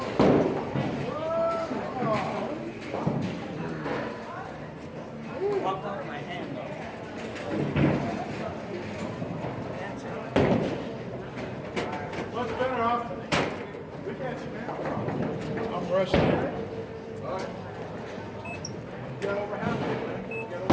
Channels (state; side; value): identical; both; correlation 1.00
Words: Popped out of my hand though. What's better off? We can't see now. I'm rushing. Sorry. Get over halfway, man. Get over